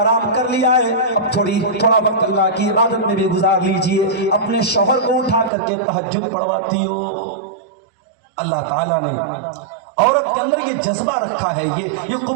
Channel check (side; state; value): left; drops out; at 5.5 s